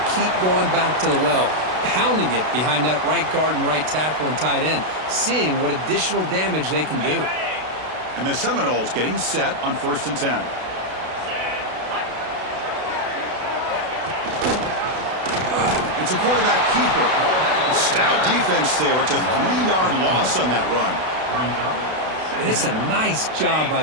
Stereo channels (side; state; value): left; late; 32 ms